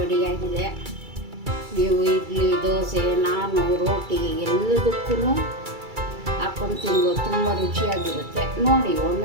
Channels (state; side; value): late; left; 2.3 ms